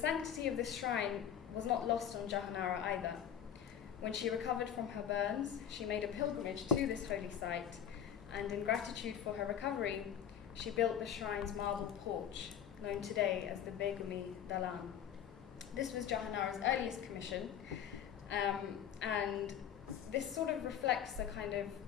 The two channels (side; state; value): right; quieter; 9.2 dB